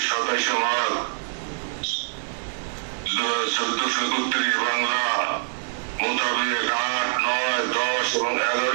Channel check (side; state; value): left; silent; digital silence